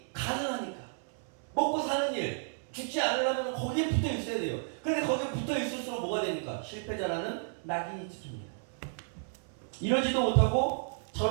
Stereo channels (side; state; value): left; silent; 56 dB below the other